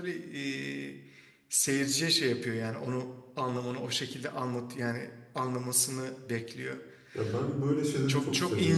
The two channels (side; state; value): both; identical; correlation 1.00